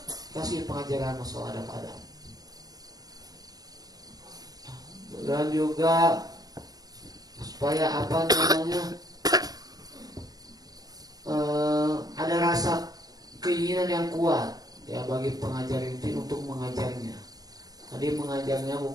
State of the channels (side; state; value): left; late; 0.18 ms